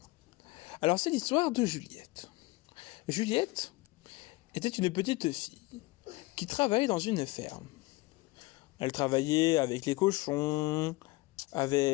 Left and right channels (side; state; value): right; quieter; 21.7 dB